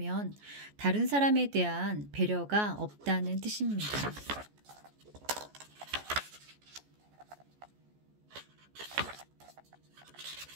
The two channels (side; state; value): left; late; 14 ms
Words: 다른 사람에 대한 배려가 없다는 뜻입니다.